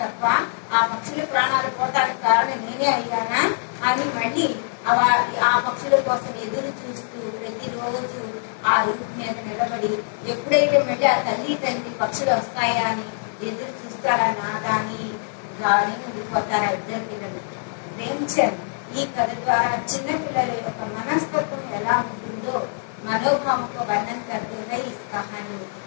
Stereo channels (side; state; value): right; silent; digital silence